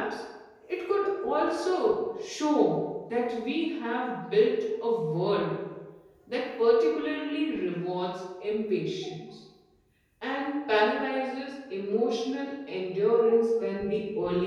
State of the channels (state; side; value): identical; both; correlation 1.00